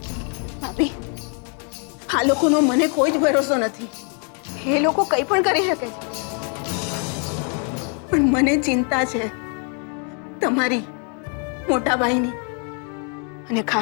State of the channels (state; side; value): quieter; right; 40.0 dB